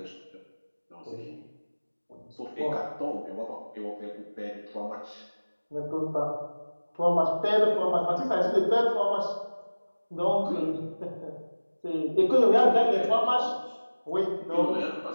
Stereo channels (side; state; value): both; inverted; correlation -1.00